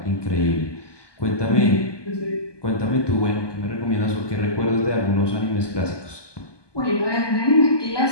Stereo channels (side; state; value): right; late; 1.2 ms